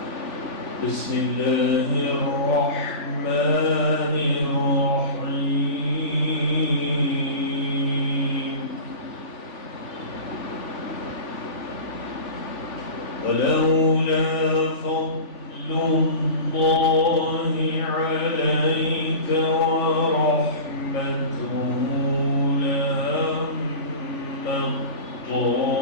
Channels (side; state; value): right; late; 3.5 ms